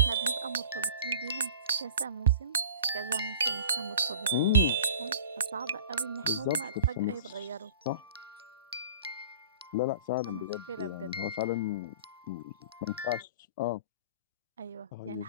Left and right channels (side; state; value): both; inverted; correlation -0.42